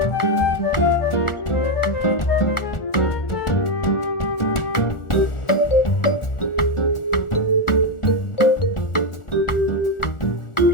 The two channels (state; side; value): late; right; 1.4 ms